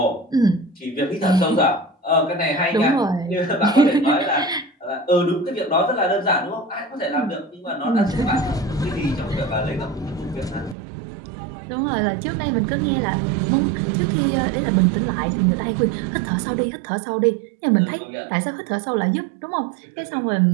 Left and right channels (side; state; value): left; drops out; at 10.8 s